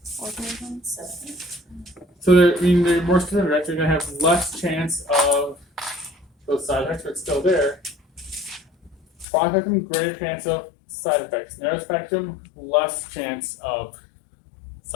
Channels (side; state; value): right; drops out; at 9.2 s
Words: organisms. So they're more specific, right? They're gonna have less chance of those side effects, but still there. Broad spectrum, greater chance of side effects. Narrow spectrum, less chance of